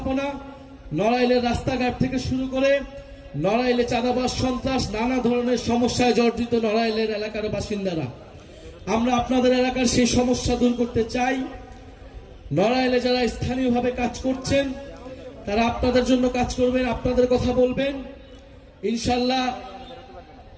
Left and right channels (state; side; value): identical; both; correlation 1.00